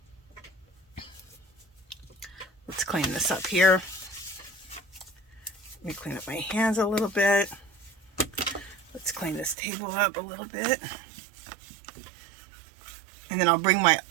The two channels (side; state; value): left; drops out; at 9.6 s